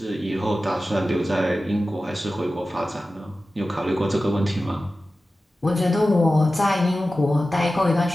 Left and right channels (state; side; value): normal; both; correlation 0.95